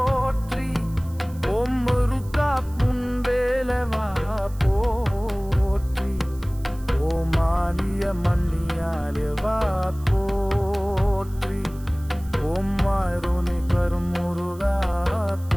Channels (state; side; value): noise; right; hiss, 24 dB below the sound